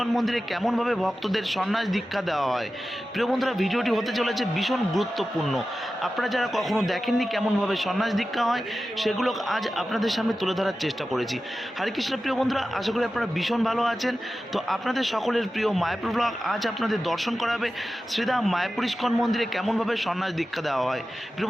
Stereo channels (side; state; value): both; normal; correlation 0.94